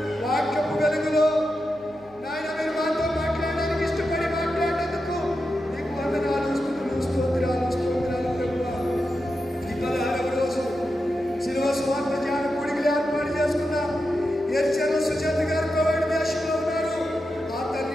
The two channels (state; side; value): noise; left; hum, 28 dB below the sound